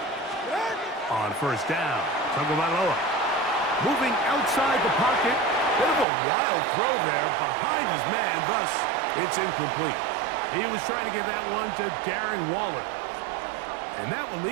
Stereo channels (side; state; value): left; drops out; at 6.1 s